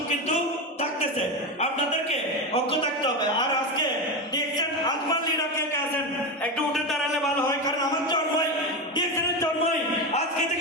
কিন্তু থাকতেছে, আপনাদেরকে অজ্ঞ থাকতে হবে। আর আজকে ডিএক্সএন আজমান লিডার কে আছেন, একটু উঠে দাঁড়ালে ভালো হয়, কারণ আমার জন্মই ডিএক্সএনের জন্মই আজকে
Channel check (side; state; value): both; normal; correlation 0.16